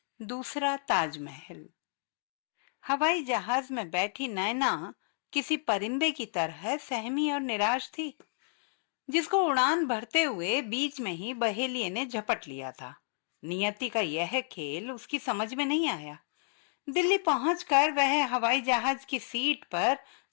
दूसरा ताजमहल। हवाई जहाज में बैठी नैना किसी परिंदे की तरह सहमी और निराश थी, जिसको उड़ान भरते हुए बीच में ही बहेलिये ने झपट लिया था। नियति का यह खेल उसकी समझ में नहीं आया। दिल्ली पहुंचकर वह हवाई जहाज की सीट पर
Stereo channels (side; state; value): right; silent; digital silence